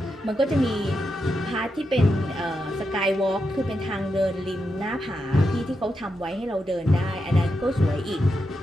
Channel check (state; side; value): normal; both; correlation 0.86